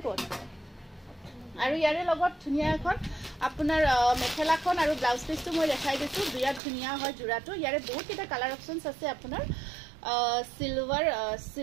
ক'ত আৰু ইয়াৰে লগত ধুনিয়া এখন আপোনাৰ মেখেলাখন আৰু ব্লাউজ পিসটো মই দেখাই দিছো বিৰাট ধুনিয়া হয় জোৰাটো ইয়াৰে বহুত কিটা কালাৰ অপচনছ আছে আপোনাৰ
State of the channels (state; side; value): drops out; left; at 6.6 s